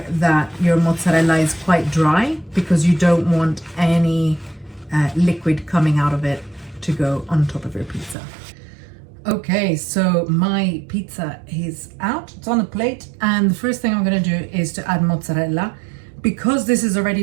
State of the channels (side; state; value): left; drops out; at 8.2 s